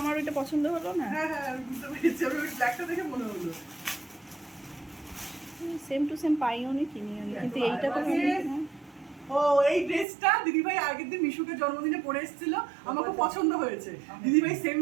ওইটা পছন্দ হলো না। হ্যাঁ হ্যাঁ, আমি বুঝতে পেরেছি। আমি ওই ব্ল্যাকটা দেখে মনে হলো। সেম টু সেম পাইও নি, কিনিও নি, কিন্তু এইটা তো ও, এই ড্রেসটা দিদিভাই আগের দিন মিশুকে জন্মদিনে পরে এসেছিল, আমাকে পছন্দ হয়েছে। দিদিভাই সেম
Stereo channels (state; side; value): drops out; left; at 10.1 s